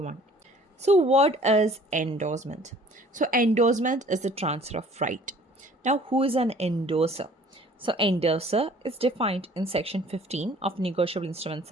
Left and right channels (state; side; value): normal; both; correlation 0.53